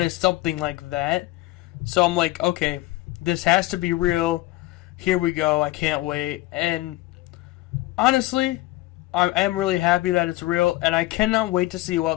something like that. So I'm like, okay, this has to be real. Here we go. I can't wait. And honestly, I am really happy that it's real, and I cannot wait to see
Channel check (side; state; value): right; quieter; 17.9 dB